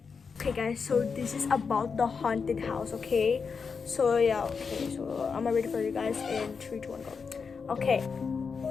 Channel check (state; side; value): quieter; right; 5.5 dB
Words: Okay guys, so this is about the haunted house. Okay, so yeah, okay, so I'm ready for you guys in 3, 2, 1, go. Okay,